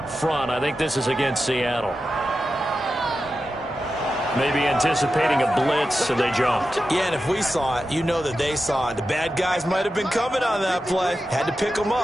front. I think this is against Seattle. Maybe anticipating a blitz, so they jumped. Yeah, and if we saw it, you know that they saw it. The bad guys might have been coming on that play. Had to pick them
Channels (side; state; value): both; normal; correlation 0.91